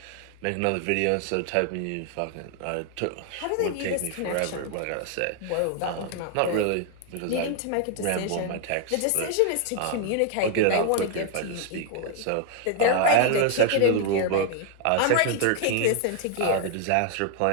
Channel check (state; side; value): different; both; correlation 0.00